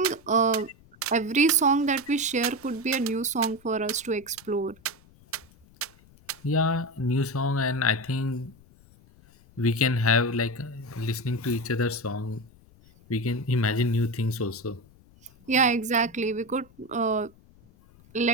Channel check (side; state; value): left; noise; rumble, 27 dB below the sound